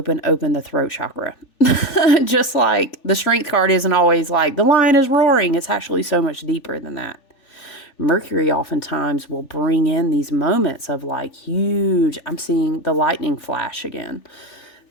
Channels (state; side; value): late; right; 3.4 ms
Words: throat chakra. Just like the strength card isn't always like the lion is roaring. It's actually so much deeper than that. Mercury oftentimes will bring in these moments of like huge, I'm seeing the lightning flash again.